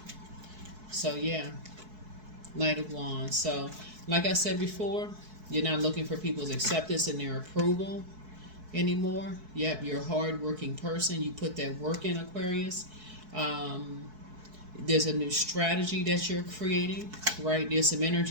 So, yeah. Knight of Wands. So, like I said before, you're not looking for people's acceptance and their approval anymore. Yep, you're a hard-working person. You put that work in, Aquarius. There's a new strategy that you're creating, right? There's some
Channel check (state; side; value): late; left; 4.6 ms